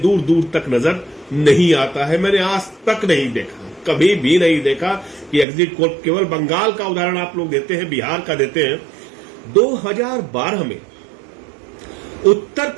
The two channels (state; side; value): drops out; left; at 5.5 s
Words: दूर तक नजर नहीं आता है। मैंने आज तक नहीं देखा, कभी भी नहीं देखा कि एग्जिट पोल, केवल बंगाल का उदाहरण आप लोग देते हैं, बिहार का देते हैं। 2012 में उत्तर